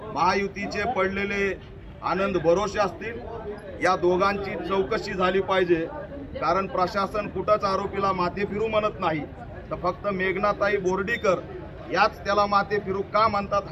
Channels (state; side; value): identical; both; correlation 1.00